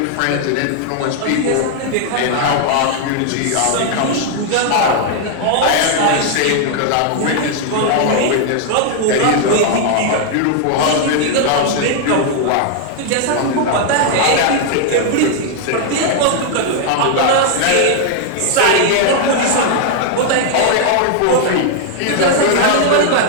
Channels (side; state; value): both; different; correlation 0.00